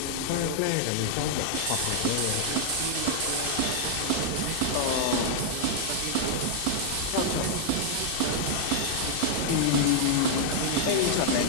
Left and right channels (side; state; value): both; different; correlation -0.01